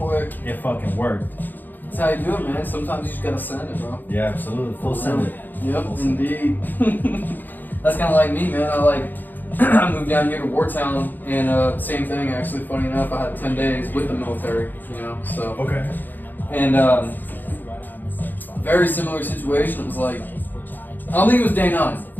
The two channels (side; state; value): right; late; 0.088 ms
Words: it fucking worked. That's how you do it, man. Sometimes you just gotta send it, bro. Yeah, absolutely. Full send it. Yep, indeed. That's kind of like me, man. I moved down here to Wartown, and same thing, actually. Funny enough, I had 10 days with the military, you know. So. Okay. And very similar situation. It was like, I don't think it was day 9.